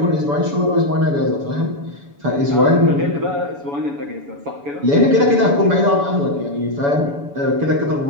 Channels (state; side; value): late; left; 7.0 ms